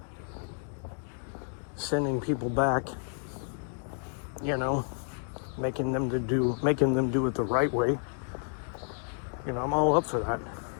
sending people back, you know, making them do it the right way. You know, I'm all up for that,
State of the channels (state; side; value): silent; right; 57 dB below the other